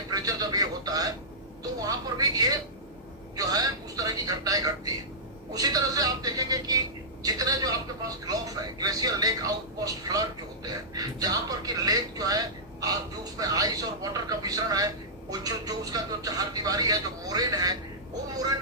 जब ये होता है तो वहां पर भी ये जो है उस तरह की घटनाएं घटती है। उसी तरह से आप देखेंगे कि जितने जो आपके पास ग्लोफ है, ग्लेशियर लेक आउटपोस्ट फ्लड जो होते हैं, जहां पर कि लेक जो है जो उसमें आइस और वाटर का मिश्रण है, वो जो उसका जो चार दीवारी है, जो मोरेन है, वो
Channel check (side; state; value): both; normal; correlation -0.14